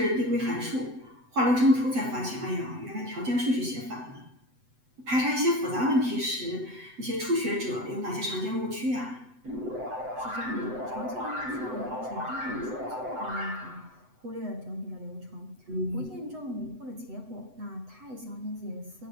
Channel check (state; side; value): late; left; 8.0 ms